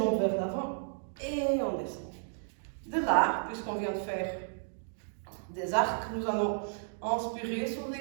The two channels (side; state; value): left; silent; digital silence